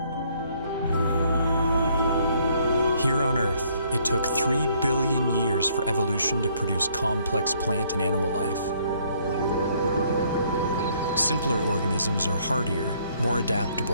Here on Earth, it took 3 billion years for evolution to produce complex plant and animal life. Simpler organisms are hardier, more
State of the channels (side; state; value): both; inverted; correlation -0.65